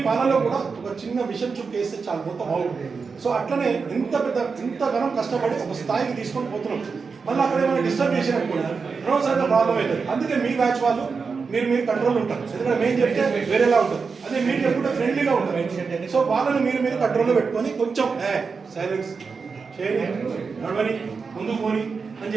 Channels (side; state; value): left; quieter; 5.1 dB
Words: పాలలో కూడా ఒక చిన్న విషయం చూపేస్తే చాలా మొత్తం బాగుంటుంది. సో అట్లనే ఇంతగానం కష్టపడి ఒక స్థాయికి తీసుకొని పోతున్నాం. మళ్ళీ అక్కడ ఏమైనా డిస్టర్బ్ చేసినప్పుడు అనవసరంగా ప్రాబ్లం అవుతుంది. అందుకే మీ బ్యాచ్ వాళ్ళు మీరు కంట్రోల్ ఉంటారు. ఎందుకంటే మేము చెప్తే వేరేలా ఉంటుంది, అదే మీరు చెప్పుకుంటే ఫ్రెండ్లీగా ఉంటారు. సో వాళ్ళని మీరు కంట్రోల్లో పెట్టుకొని కొంచెం సైలెన్స్ చేయని, నడవని, ముందుకు పోని అని